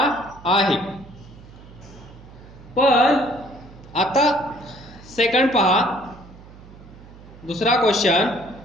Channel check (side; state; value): right; noise; hum, 20 dB below the sound